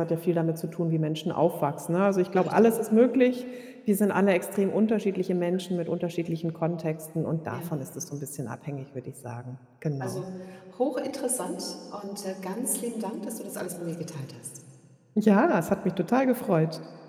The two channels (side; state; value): both; identical; correlation 1.00